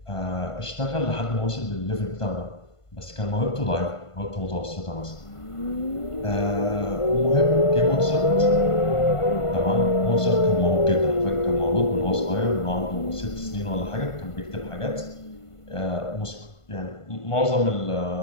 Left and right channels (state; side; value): late; right; 1.5 ms